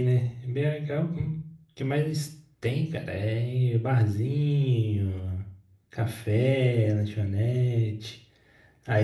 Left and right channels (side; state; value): both; identical; correlation 1.00